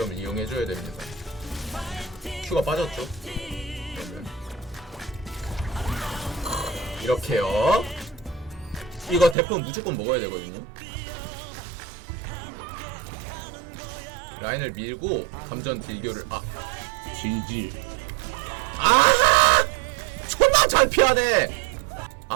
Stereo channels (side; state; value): left; drops out; at 9.3 s